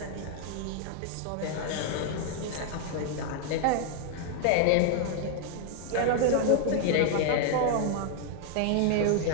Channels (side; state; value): both; different; correlation 0.00